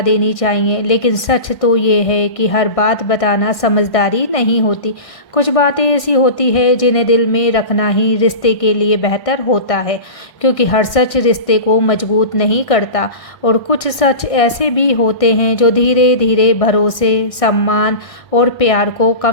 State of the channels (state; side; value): late; right; 1.6 ms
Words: देनी चाहिए, लेकिन सच तो ये है कि हर बात बताना समझदारी नहीं होती। कुछ बातें ऐसी होती है जिन्हें दिल में रखना ही रिश्ते के लिए बेहतर होता है, क्योंकि हर सच रिश्ते को मजबूत नहीं करता। और कुछ सच ऐसे भी होते हैं जो धीरे धीरे भरोसे, सम्मान और प्यार को